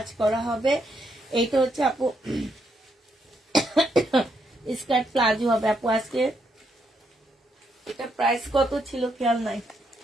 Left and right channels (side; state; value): both; normal; correlation 0.77